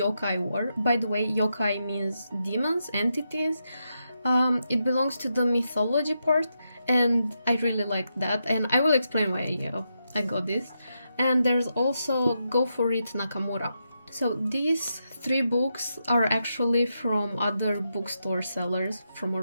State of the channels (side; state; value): both; inverted; correlation -0.85